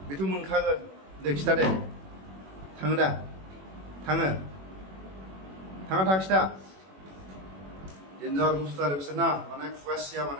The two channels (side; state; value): left; late; 21 ms